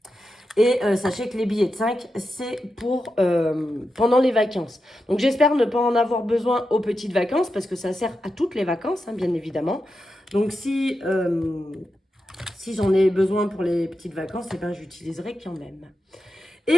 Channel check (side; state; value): both; normal; correlation 0.89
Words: Et sachez que les billets de 5, c'est pour pendant les vacances. Donc, j'espère ne pas en avoir besoin aux petites vacances, parce que ça sert à toutes les vacances, hein, bien évidemment. Donc, si j'en ai besoin pour les petites vacances, eh ben, j'utiliserai quand même.